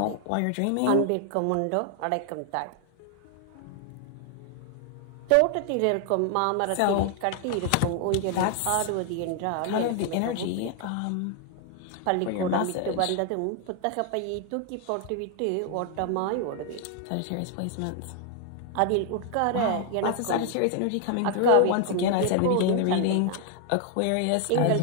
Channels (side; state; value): both; different; correlation 0.00